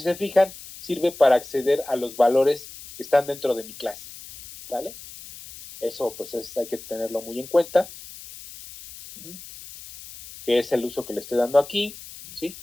se fijan, sirve para acceder a los valores que están dentro de mi clase, ¿vale? Eso pues hay que tenerlo muy en cuenta, que es el uso que le estoy dando aquí, ¿sí?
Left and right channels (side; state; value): left; noise; hiss, 16 dB below the sound